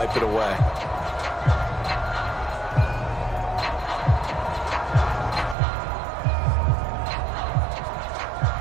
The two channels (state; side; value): drops out; left; at 5.6 s